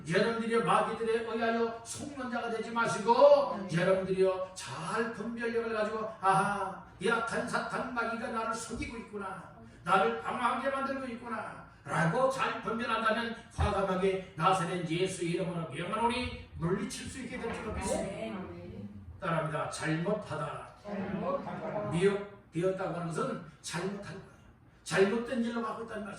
여러분들이 마귀들에 의하여 속는 자가 되지 마시고 여러분들이요 잘 분별력을 가지고 아하 약한 사탄 마귀가 나를 속이고 있구나, 나를 방황하게 만들고 있구나 라고 잘 분별한다면 과감하게 나사렛 예수 이름으로 명하노니 물리칠 수 있게 될 줄 믿습니다. 따라합니다. 잘못하다 미혹되었다고 하는 것은 잘못한 거예요. 잘못된 일로 가고 있다는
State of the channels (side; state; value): both; identical; correlation 1.00